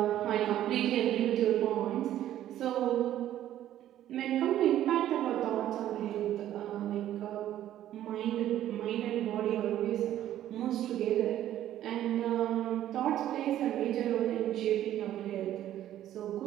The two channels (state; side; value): quieter; left; 12.3 dB